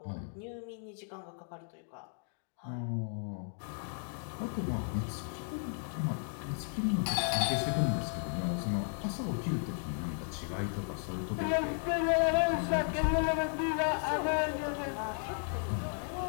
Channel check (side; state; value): right; silent; 55 dB below the other